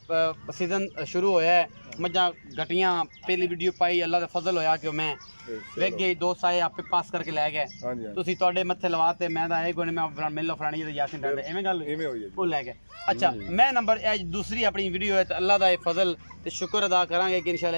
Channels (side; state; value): both; inverted; correlation -1.00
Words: सीजन शुरू होया है, मज्जा घटियां पहली वीडियो पाई, अल्लाह का फजल होया कि मैं वेख गई, दोस्त आए आपे पास करके लै गए, तुसी तुहाडे मत्थे लवाते, मैं ता कोई मैं मिल लो फलानी यासिन ठाडे एवें गल वो लै गए। अच्छा मैं नंबर दूसरी अपनी वीडियो है तो अल्लाह का फजल ते शुक्र अदा करांगे कि